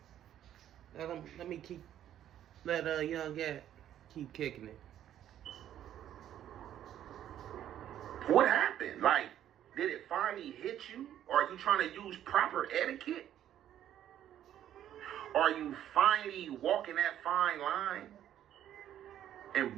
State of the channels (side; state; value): left; quieter; 11.1 dB